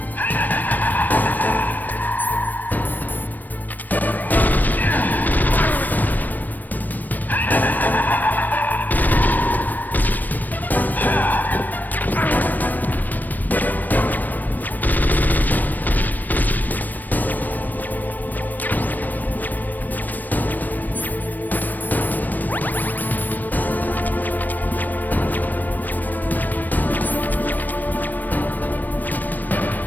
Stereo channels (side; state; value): right; late; 0.087 ms